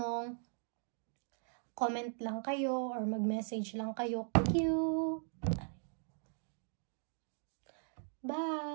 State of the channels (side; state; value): left; silent; 52 dB below the other